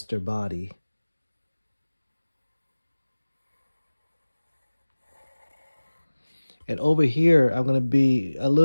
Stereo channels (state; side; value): inverted; both; correlation -1.00